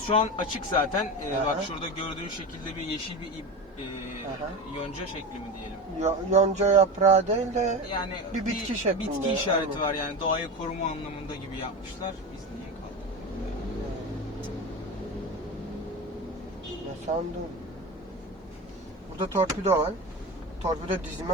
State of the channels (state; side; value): normal; both; correlation 0.25